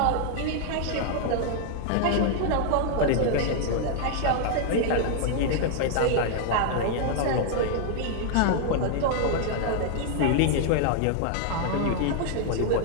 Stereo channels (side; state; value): both; different; correlation 0.00